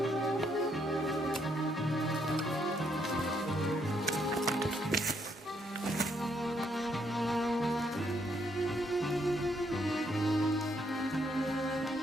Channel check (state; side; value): normal; both; correlation 0.73